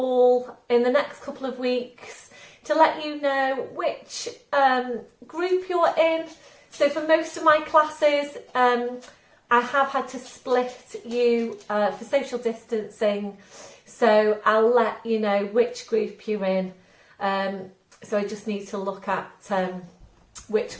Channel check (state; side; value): identical; both; correlation 1.00